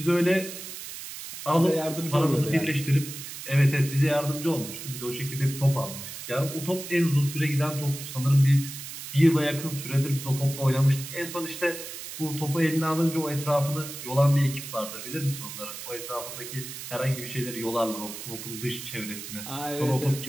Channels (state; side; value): noise; right; hiss, 10 dB below the sound